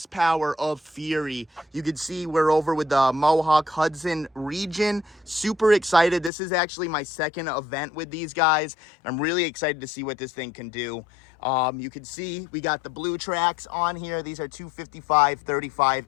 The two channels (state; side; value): drops out; right; at 6.3 s